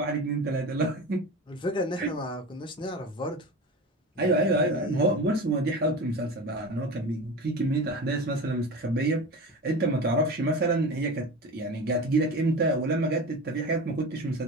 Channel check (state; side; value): normal; both; correlation 0.30